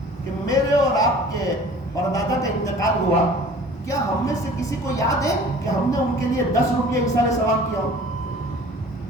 کہ میرے اور آپ کے پردادا کا انتقال ہوا, کیا ہم میں سے کسی کو یاد ہے کہ ہم نے ان کے لیے 10 روپیہ ایسال ثواب کیا ہو؟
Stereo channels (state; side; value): normal; both; correlation 0.47